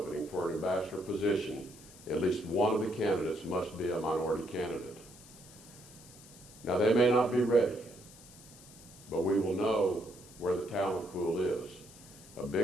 for an ambassador position, at least one of the candidates must be a minority candidate. Now, they may not be ready, but we will know where the talent pool is. A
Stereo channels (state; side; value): noise; left; hiss, 20 dB below the sound